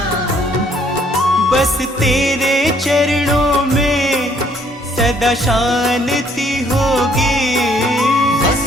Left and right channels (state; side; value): normal; both; correlation 0.65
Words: हूँ। बस तेरे चरणों में सदा शांति होगी, बस